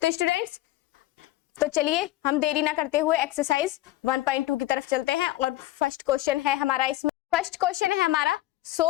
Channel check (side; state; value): right; quieter; 15.9 dB